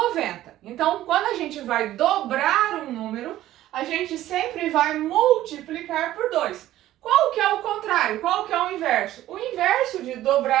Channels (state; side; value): quieter; left; 14.1 dB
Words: Então, quando a gente vai dobrar um número, a gente sempre vai multiplicar por 2. Qual que é o contrário? Qual que é o inverso? O inverso de